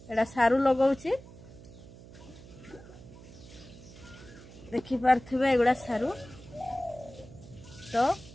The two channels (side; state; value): right; noise; hum, 18 dB below the sound